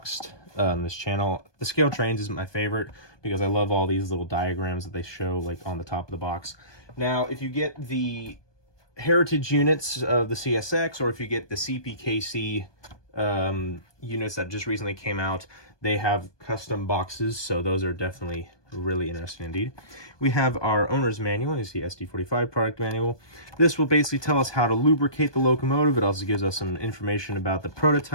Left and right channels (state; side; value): late; right; 1.2 ms